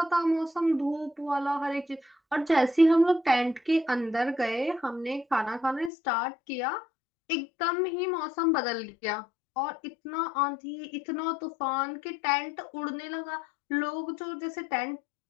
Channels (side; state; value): right; drops out; at 5.9 s